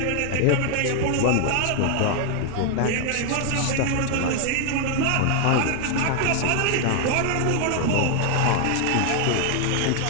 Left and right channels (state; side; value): different; both; correlation 0.00